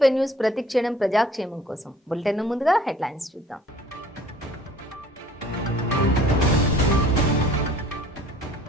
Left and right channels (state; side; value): normal; both; correlation 0.53